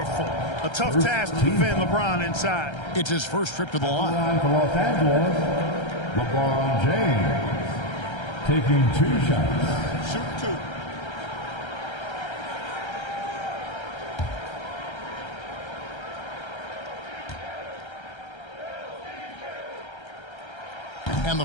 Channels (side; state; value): right; late; 1.3 ms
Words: A tough task to defend LeBron inside. It's his first trip to the line. For Los Angeles, LeBron James. Taking 2 shots. Shoot 2. And